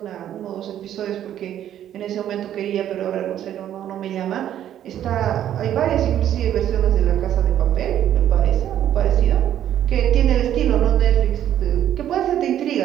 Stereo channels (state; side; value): quieter; left; 11.0 dB